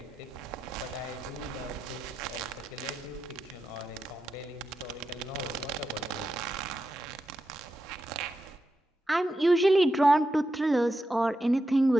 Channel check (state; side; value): normal; both; correlation 0.88